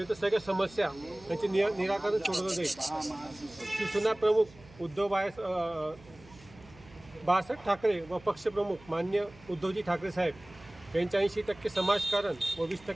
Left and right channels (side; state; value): right; noise; hum, 23 dB below the sound